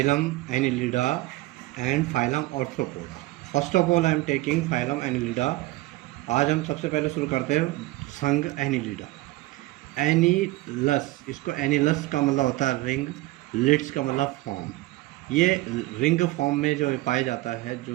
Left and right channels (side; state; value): left; quieter; 18.9 dB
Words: Annelida and phylum Arthropoda. First of all, I am taking phylum Annelida. आज हम सबसे पहले शुरू करते हैं संघ एनिलिडा। एनिलस, इसको एनिलस का मतलब होता है रिंग, लिड्स का मतलब फॉर्म। ये रिंग फॉर्म में जो पाया जाता है,